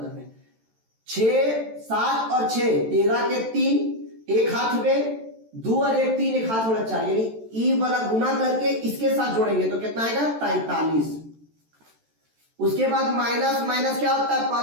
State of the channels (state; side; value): late; left; 13 ms